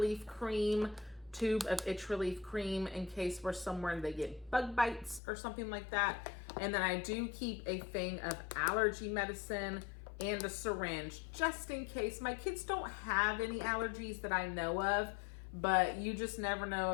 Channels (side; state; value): right; drops out; at 5.2 s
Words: cream, tube of itch relief cream in case we're somewhere and they get bug bites or something like that. And then I do keep a thing of allergy medicine and a syringe just in case. My kids don't have any allergies that I know of, but you just never know